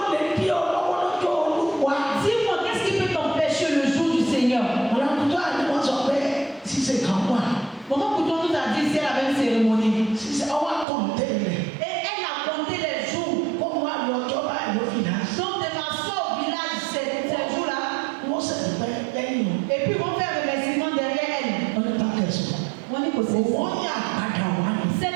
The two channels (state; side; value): drops out; left; at 10.9 s